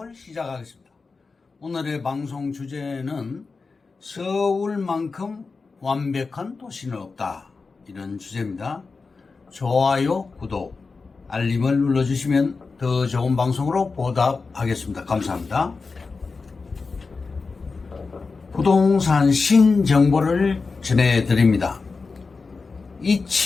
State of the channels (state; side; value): quieter; right; 4.4 dB